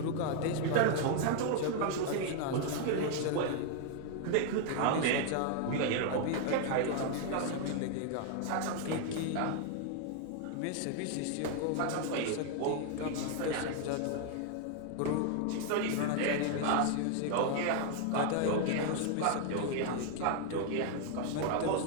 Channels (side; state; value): both; different; correlation 0.00